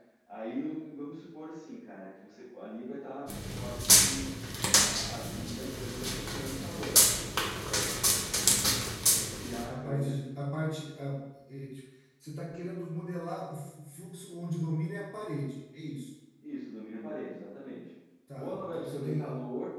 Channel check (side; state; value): both; identical; correlation 1.00